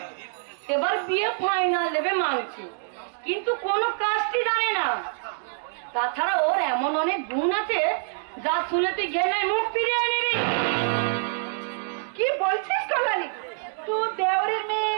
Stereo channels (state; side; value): silent; left; digital silence